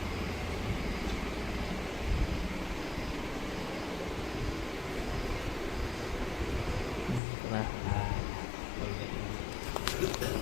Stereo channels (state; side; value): drops out; right; at 7.2 s